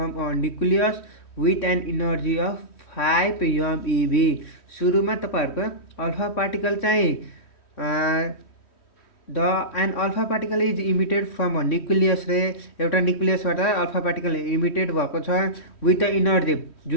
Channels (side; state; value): right; late; 3.1 ms